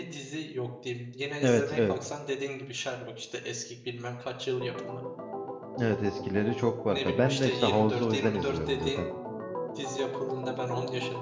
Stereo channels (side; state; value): both; identical; correlation 1.00